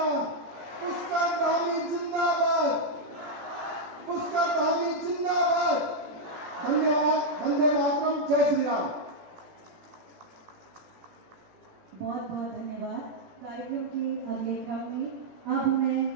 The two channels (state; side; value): late; left; 17 ms